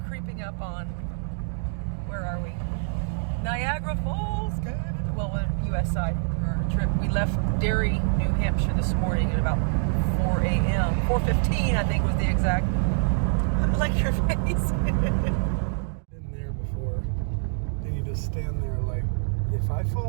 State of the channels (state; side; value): silent; left; digital silence